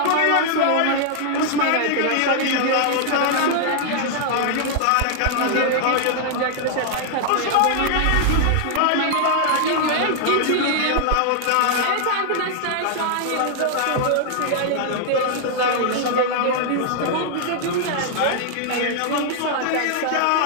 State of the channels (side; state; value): both; different; correlation -0.01